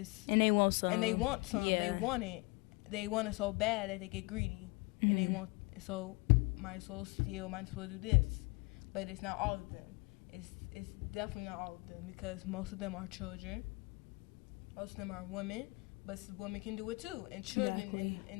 And they want some. Yeah. They want it. They want it so bad that they get greedy. Mm-hmm. And they want, so might as well steal, might as well do this. But it's not all of them. It's definitely not all of them because most of them are children. Most of them are women. But women can do it too, and children,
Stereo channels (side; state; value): right; quieter; 26.7 dB